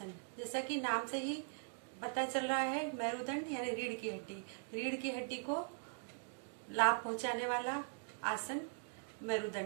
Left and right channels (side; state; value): left; silent; digital silence